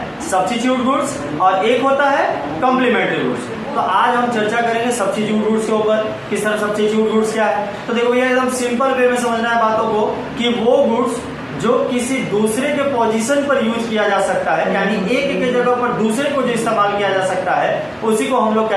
सब्स्टिट्यूट गुड्स और एक होता है कॉम्प्लीमेंट्री गुड्स। तो आज हम चर्चा करेंगे सब्स्टिट्यूट गुड्स के ऊपर, किस तरह सब्स्टिट्यूट गुड्स क्या है। तो देखो ये एकदम सिंपल वे में समझना है बातों को कि वो गुड्स जो किसी दूसरे के पोजीशन पर यूज किया जा सकता है, यानी एक के जगह पर दूसरे को जो इस्तेमाल किया जा सकता है, उसी को हम लोग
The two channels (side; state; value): both; identical; correlation 1.00